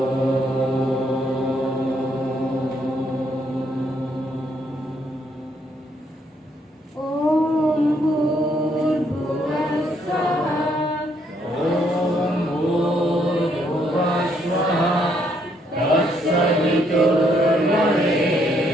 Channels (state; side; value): normal; both; correlation 0.72